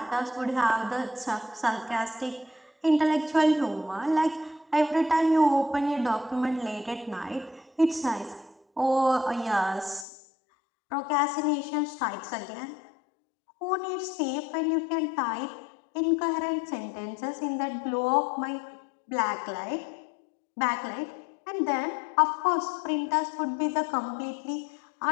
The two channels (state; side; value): drops out; right; at 10.1 s